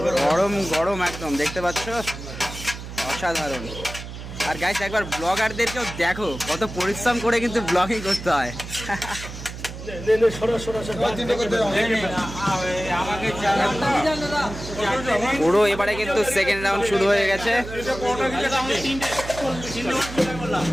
গরম গরম একদম দেখতে পাচ্ছ, অসাধারণ। আর গাইস একবার ব্লগারদেরকেও দেখো কত পরিশ্রম করে কিন্তু ব্লগিং করতে হয়। পুরো এবারে কিন্তু সেকেন্ড রাউন্ড শুরু হয়ে গেছে।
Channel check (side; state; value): right; noise; hum, 10 dB below the sound